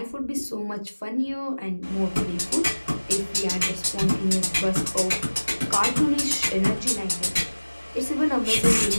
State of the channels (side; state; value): both; inverted; correlation -1.00